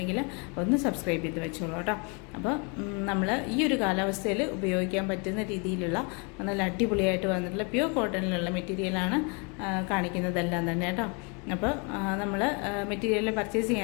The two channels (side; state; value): right; quieter; 33.7 dB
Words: ഒന്ന് സബ്സ്ക്രൈബ് ചെയ്ത് വെച്ചോളൂ കേട്ടോ. അപ്പോൾ നമ്മൾ ഈ ഒരു കാലാവസ്ഥയിൽ ഉപയോഗിക്കാൻ പറ്റുന്ന രീതിയിലുള്ള നല്ല അടിപൊളിയായിട്ട് വന്നിട്ടുള്ള പ്യൂർ കോട്ടണിലുള്ള മെറ്റീരിയലാണ് കാണിക്കുന്നതെല്ലാം തന്നെ കേട്ടോ. അപ്പോൾ നമ്മൾ മെറ്റീരിയൽ പർച്ചേസ്